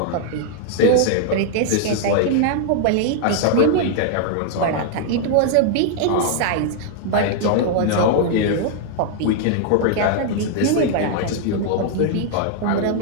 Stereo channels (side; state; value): both; different; correlation 0.00